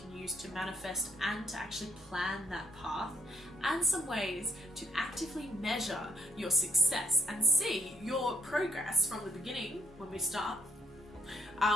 use to manifest and to actually plan that path, and some ways to actively measure your success and see your progress from the beginning when we start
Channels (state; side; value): normal; both; correlation 0.71